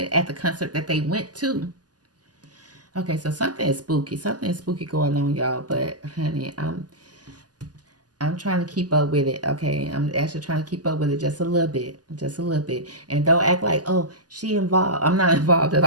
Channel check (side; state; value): left; late; 0.68 ms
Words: at the concert that they went to. Okay, so something is spooky. Something is spooky going on, y'all. But honey, I'm trying to keep up with it. Okay, I'm actually trying to keep up with it just a little bit, and don't act like, oh, she involved. I'm not involved at